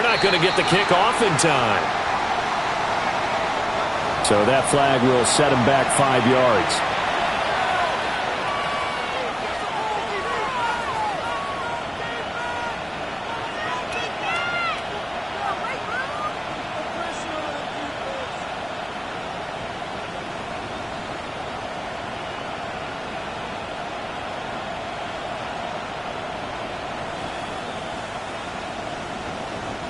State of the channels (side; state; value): both; identical; correlation 1.00